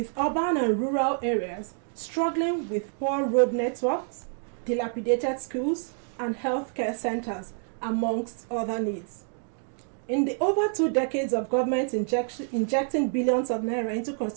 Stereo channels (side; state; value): left; silent; 60 dB below the other